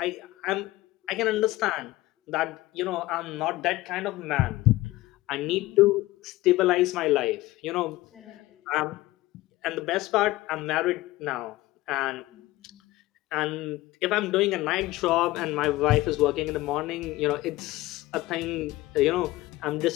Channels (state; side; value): quieter; right; 18.2 dB